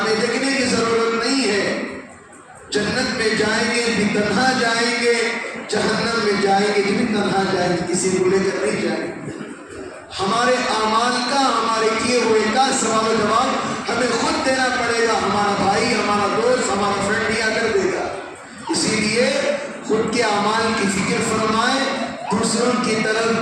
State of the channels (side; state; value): both; identical; correlation 1.00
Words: دیکھنے کی ضرورت نہیں ہے۔ جنت میں جائیں گے بھی تنہا جائیں گے، جہنم میں جائیں گے بھی تنہا جائیں گے، کسی کو لے کر نہیں جائیں گے۔ ہمارے اعمال کا، ہمارے کیے ہوئے کا سوال و جواب ہمیں خود دینا پڑے گا، ہمارا بھائی، ہمارا دوست، ہمارا فرینڈ نہیں آ کر دے گا۔ اسی لیے خود کے اعمال کی فکر فرمائیں، دوسروں کی